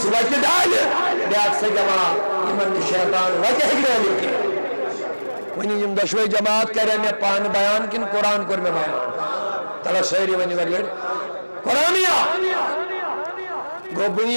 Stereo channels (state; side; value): inverted; both; correlation -1.00